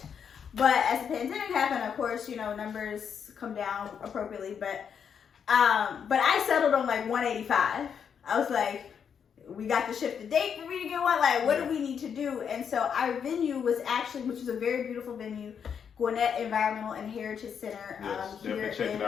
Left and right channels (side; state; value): right; quieter; 7.4 dB